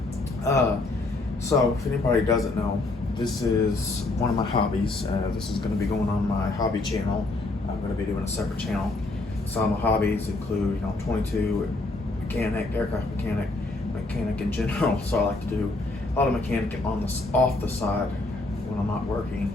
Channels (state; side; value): quieter; right; 3.1 dB